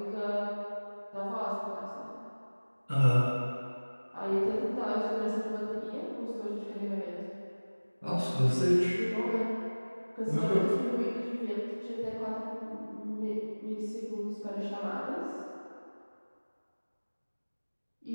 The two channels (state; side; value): inverted; both; correlation -1.00